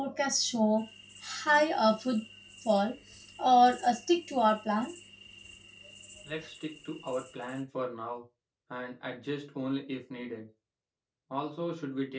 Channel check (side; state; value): both; identical; correlation 1.00